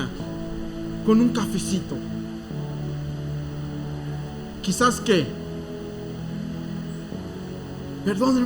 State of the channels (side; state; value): both; identical; correlation 1.00